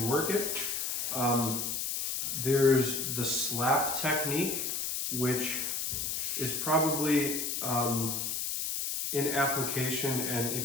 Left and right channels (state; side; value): noise; left; hiss, 1 dB below the sound